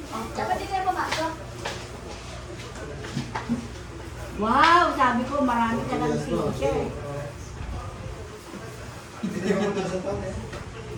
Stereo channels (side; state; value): both; identical; correlation 1.00